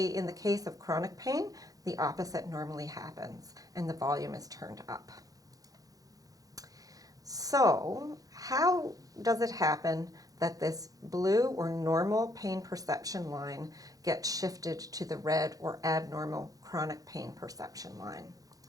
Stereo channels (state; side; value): late; left; 0.17 ms